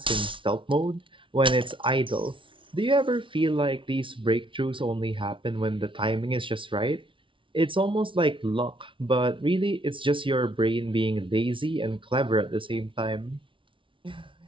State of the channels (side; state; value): left; late; 0.25 ms